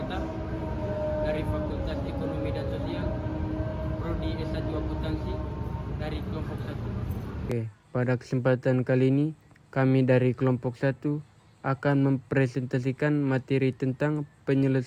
dari Fakultas Ekonomi dan Sosial, Prodi S1 Akuntansi dari kelompok 1. Oke, pada kesempatan kali ini kami dari kelompok 1 akan mempresentasikan materi tentang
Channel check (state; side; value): identical; both; correlation 1.00